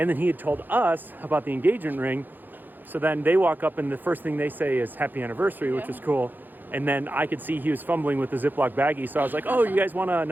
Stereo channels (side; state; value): left; late; 0.088 ms